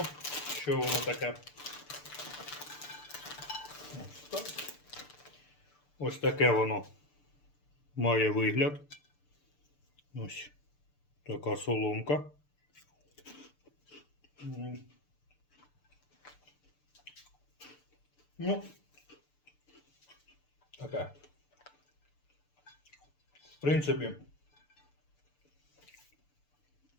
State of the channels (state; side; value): late; right; 6.8 ms